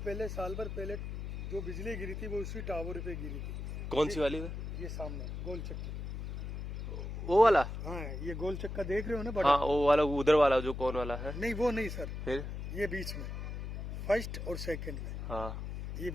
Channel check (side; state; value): left; noise; hum, 6 dB below the sound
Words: साल भर पहले जो बिजली गिरी थी वो उसी टावर पे गिरी थी। कौन सी वाली है? ये सामने गोल चक्का, वो वाला। हाँ, ये गोल चक्का देख रहे हो ना बड़ा। हाँ, वो वाला उधर वाला जो कौन वाला है? नहीं, वो नहीं सर, फिर ये बीच में फर्स्ट और सेकंड में। हाँ, ये